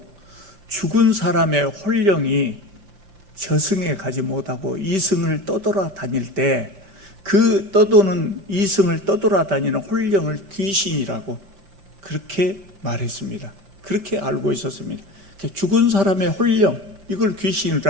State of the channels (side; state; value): left; late; 5.1 ms